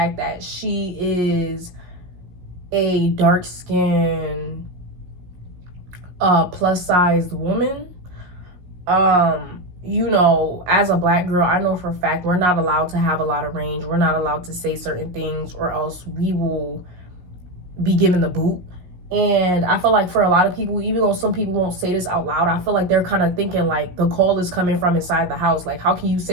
that she is a dark-skinned, plus-sized woman. You know, as a black girl, I know for a fact we're not allowed to have a lot of range. We're not allowed to say certain things, or else we will be given the boot. And I feel like for a lot of people, even though some people won't say this out loud, I feel like they're kind of thinking like the call is coming from inside the house. Like, how can you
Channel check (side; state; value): left; late; 17 ms